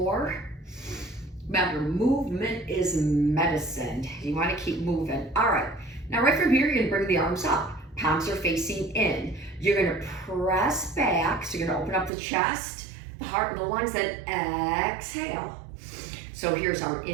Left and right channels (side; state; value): left; drops out; at 12.1 s